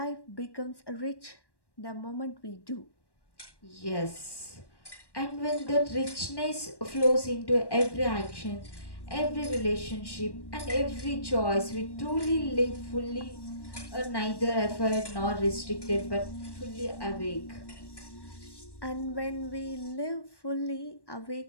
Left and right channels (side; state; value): right; late; 1.1 ms